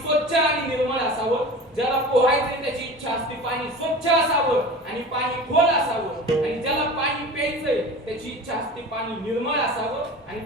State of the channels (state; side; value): normal; both; correlation 0.35